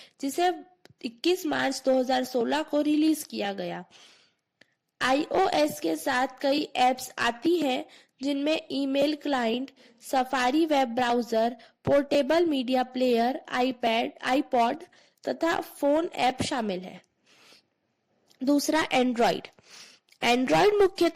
जिसे 21 मार्च 2016 को रिलीज किया गया। iOS के साथ कई एप्स आती हैं जिनमें email client, safari web browser, portable media player, iPad, iPod तथा फोन ऐप शामिल है। दूसरा, एंड्रॉइड। एंड्रॉइड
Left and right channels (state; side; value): identical; both; correlation 1.00